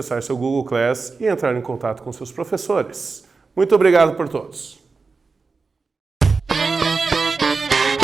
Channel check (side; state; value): left; quieter; 4.3 dB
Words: seu Google Class e entrar em contato com seus professores. Muito obrigado por todos.